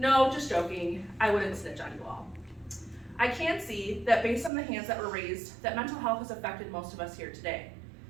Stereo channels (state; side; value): drops out; left; at 4.5 s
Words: just joking. I wouldn't snitch on you all. I can see that based on the hands that were raised, that mental health has affected most of us here today.